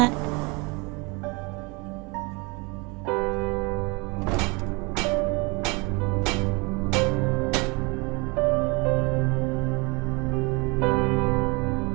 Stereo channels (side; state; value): left; quieter; 28.3 dB